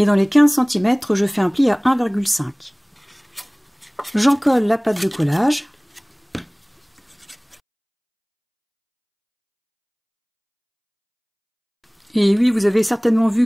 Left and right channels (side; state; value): both; identical; correlation 1.00